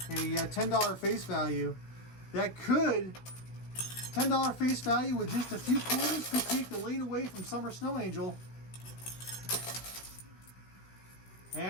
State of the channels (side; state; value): right; late; 16 ms